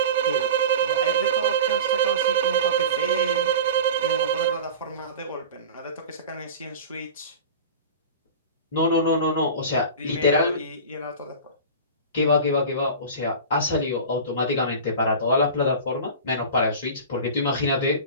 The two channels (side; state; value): both; inverted; correlation -0.32